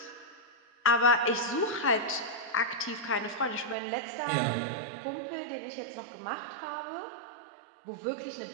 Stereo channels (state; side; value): drops out; left; at 3.8 s